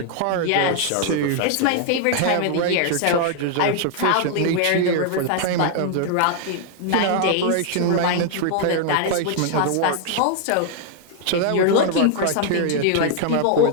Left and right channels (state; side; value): different; both; correlation 0.00